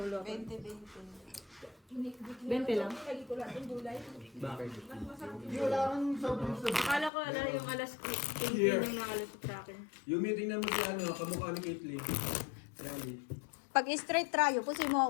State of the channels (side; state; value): right; drops out; at 7.1 s